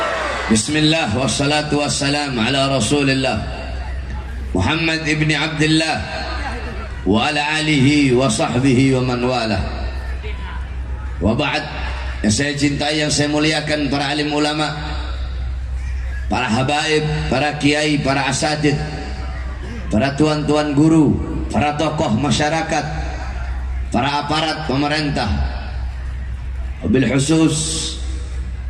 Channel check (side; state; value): both; identical; correlation 1.00